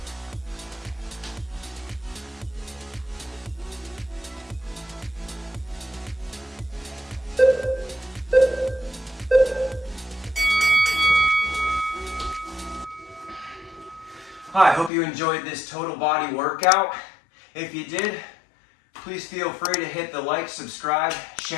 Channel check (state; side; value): drops out; right; at 14.9 s